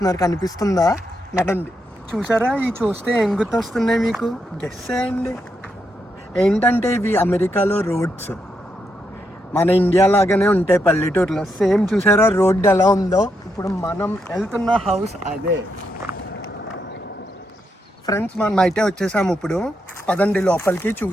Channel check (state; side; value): normal; both; correlation 0.81